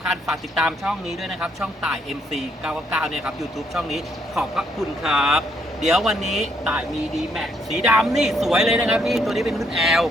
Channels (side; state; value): both; normal; correlation 0.72